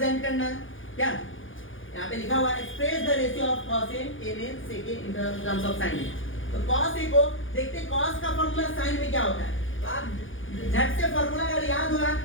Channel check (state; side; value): late; right; 0.58 ms